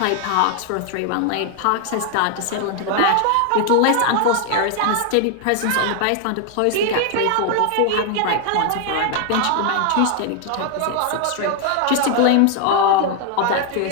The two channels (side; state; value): both; different; correlation 0.00